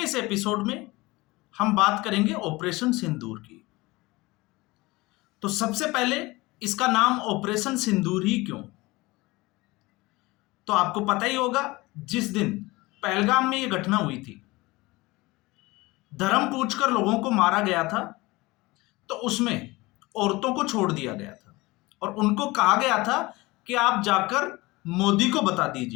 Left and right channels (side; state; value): right; quieter; 21.7 dB